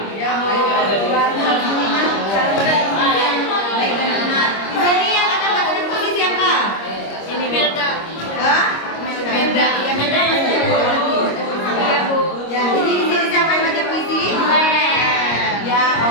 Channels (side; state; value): right; late; 25 ms